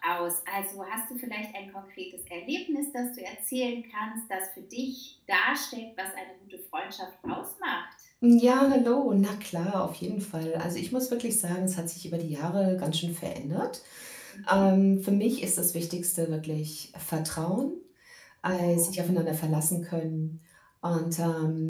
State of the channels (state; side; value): identical; both; correlation 1.00